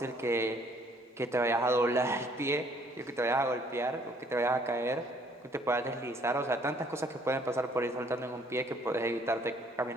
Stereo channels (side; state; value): both; normal; correlation 0.62